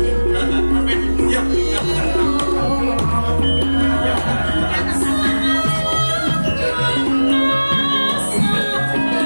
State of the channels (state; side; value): inverted; both; correlation -1.00